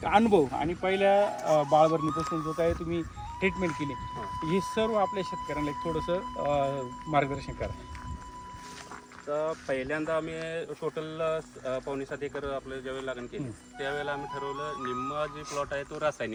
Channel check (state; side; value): identical; both; correlation 1.00